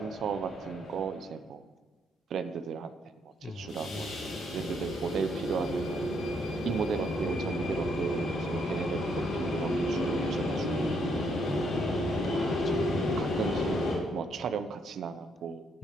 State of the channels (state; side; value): normal; both; correlation 0.72